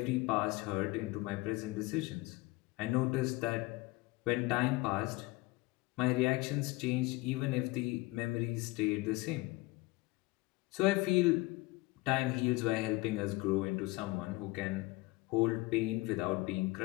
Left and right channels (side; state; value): right; quieter; 22.0 dB